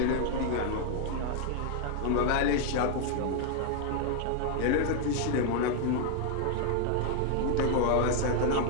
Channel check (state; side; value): different; both; correlation 0.00